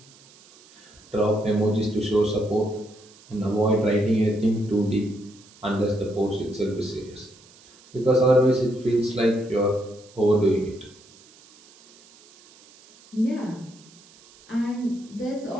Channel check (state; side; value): noise; right; hiss, 26 dB below the sound